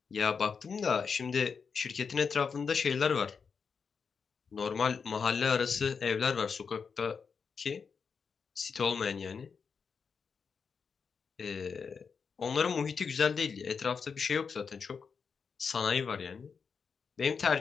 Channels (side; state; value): right; quieter; 5.8 dB